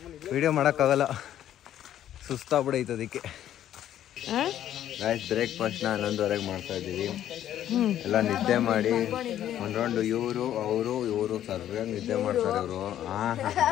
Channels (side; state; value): right; quieter; 11.4 dB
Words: ವಿಡಿಯೋ ಮಾಡೋಕ್ಕಾಗಲ್ಲ, ಸುಸ್ತಾಗ್ಬಿಡೈತೆ. ಅದಕ್ಕೆ ಆಯ್ತು ಬ್ರೇಕ್ಫಾಸ್ಟ್ನ 11:30 ಮಾಡ್ತಾ ಇದ್ದೀವಿ. ಎಲ್ಲ ನಿದ್ದೆ ಮಾಡಿ ಒಂದು ರೌಂಡು ಇವರು ಸರಿಯಾಗಿ ನಿದ್ದೆ ಮಾಡ್ತಾರೆ ಇವರು.